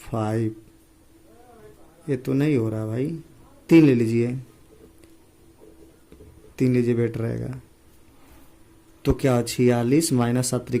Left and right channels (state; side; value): identical; both; correlation 1.00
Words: 5। ये तो नहीं हो रहा भाई, 3 ले लीजिए, 3 लीजिए बेटर रहेगा। तो क्या 46 माइनस 7